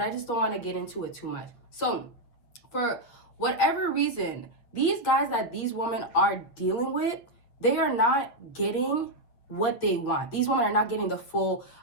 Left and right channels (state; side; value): late; right; 8.3 ms